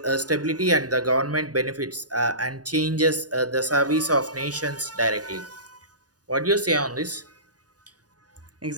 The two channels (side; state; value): left; late; 0.68 ms